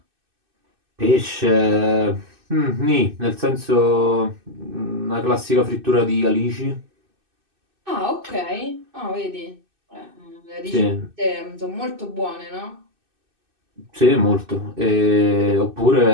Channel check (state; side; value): late; left; 2.6 ms